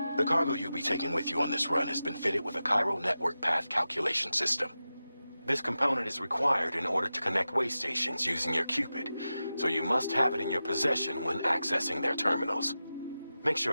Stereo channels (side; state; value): both; inverted; correlation -0.93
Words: The cargo you'll be taking with you on this run has been fitted with a Cairo network path calculation system. This component is required in order to connect way stations using your Cupid, so you must have it in your possession when accessing their terminals. Make